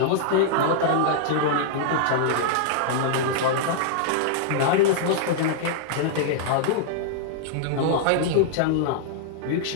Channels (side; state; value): both; different; correlation -0.01